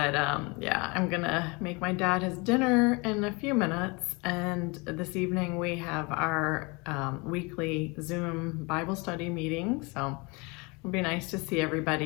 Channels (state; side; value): quieter; right; 28.1 dB